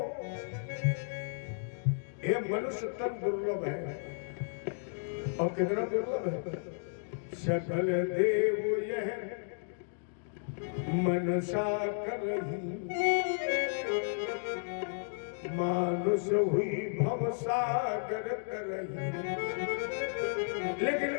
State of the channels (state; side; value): silent; right; digital silence